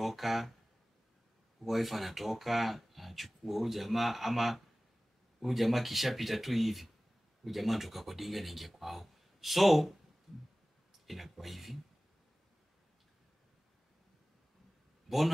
Wife anatoka, anachukua huyu jamaa, ama huyu jamaa kishapita tu hivi. Huyu jamaa anatoka kwa dinga na ingia kwao. So inakuwa hivi.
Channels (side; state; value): both; normal; correlation 0.98